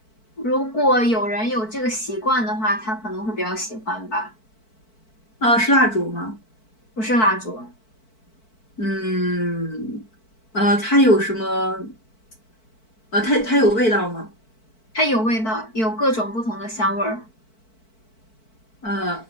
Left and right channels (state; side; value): late; right; 4.5 ms